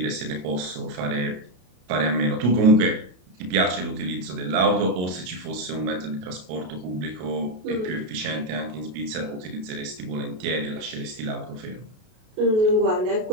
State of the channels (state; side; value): late; left; 33 ms